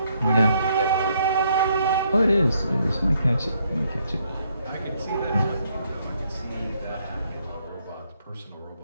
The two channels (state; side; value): inverted; both; correlation -0.72